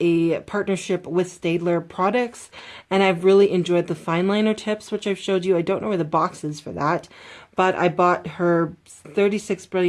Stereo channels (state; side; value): identical; both; correlation 1.00